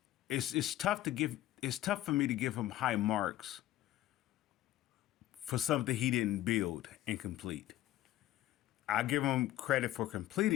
It's tough for me to give him high marks for something he didn't build and complete. I give him credit for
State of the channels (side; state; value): right; quieter; 14.5 dB